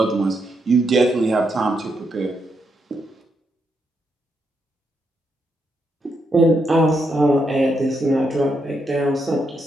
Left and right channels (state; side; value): normal; both; correlation 0.80